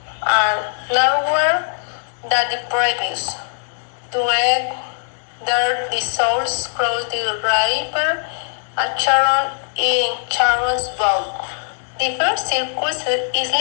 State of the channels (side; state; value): right; silent; 66 dB below the other